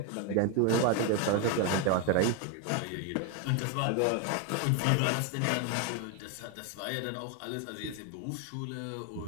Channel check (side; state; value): both; different; correlation 0.01